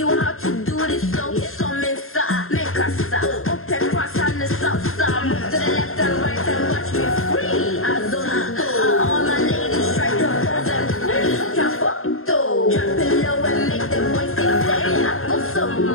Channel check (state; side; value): late; right; 0.61 ms